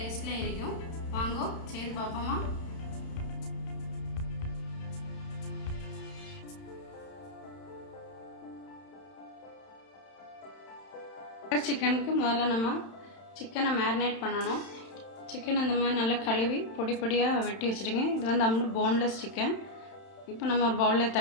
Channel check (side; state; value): right; late; 31 ms